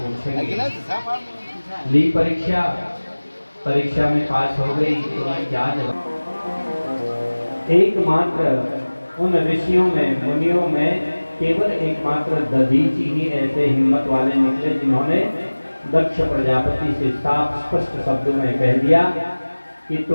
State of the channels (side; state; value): both; inverted; correlation -1.00